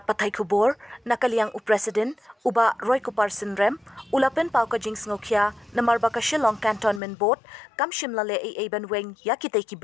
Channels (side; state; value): right; drops out; at 7.0 s